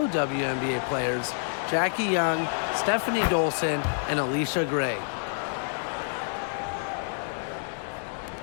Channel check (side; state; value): right; silent; digital silence